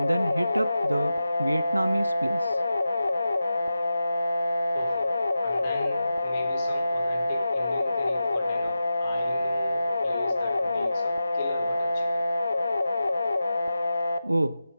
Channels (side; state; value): both; inverted; correlation -0.92